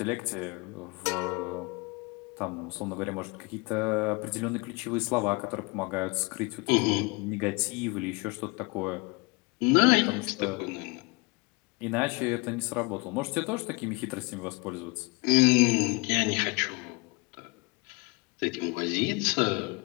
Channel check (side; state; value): right; quieter; 27.4 dB